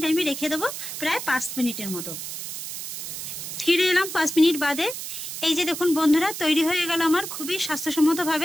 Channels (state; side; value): noise; right; hiss, 7 dB below the sound